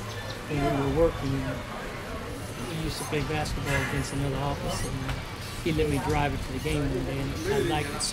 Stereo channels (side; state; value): both; identical; correlation 1.00